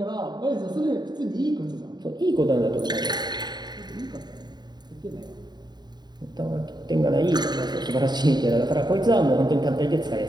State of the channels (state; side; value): late; left; 0.20 ms